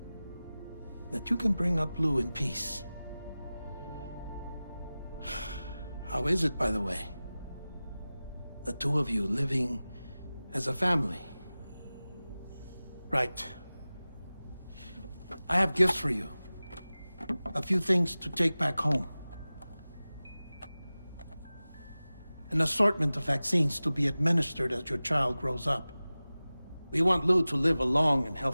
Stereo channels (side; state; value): both; inverted; correlation -0.97